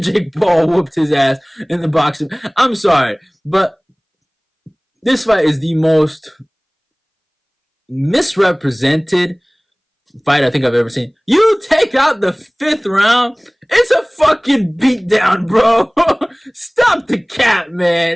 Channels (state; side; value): identical; both; correlation 1.00